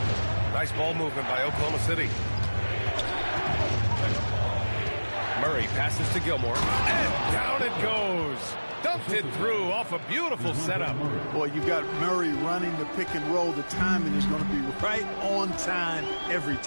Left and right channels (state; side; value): inverted; both; correlation -1.00